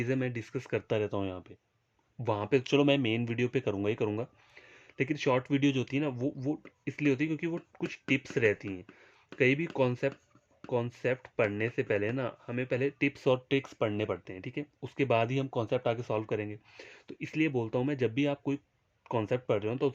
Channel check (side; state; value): both; identical; correlation 1.00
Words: मैं डिस्कस करता रहता हूँ यहाँ पे। वहाँ पे चलो मैं मेन वीडियो पे करूँगा ही करूँगा, लेकिन शॉर्ट वीडियो जो होती है ना, वो इसलिए होती है क्योंकि वो कुछ टिप्स रहती हैं। कहीं भी कॉन्सेप्ट पढ़ने से पहले ना, हमें पहले टिप्स और ट्रिक्स पढ़ने पड़ते हैं, ठीक है। उसके बाद ही हम कॉन्सेप्ट आगे सॉल्व करेंगे। तो इसलिए बोलता हूँ मैं, जब भी आप कोई कॉन्सेप्ट पढ़ रहे हो तो